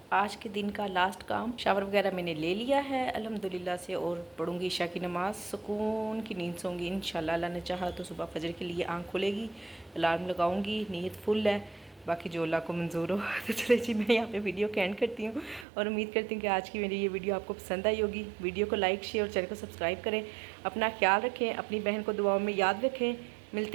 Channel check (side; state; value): left; drops out; at 15.7 s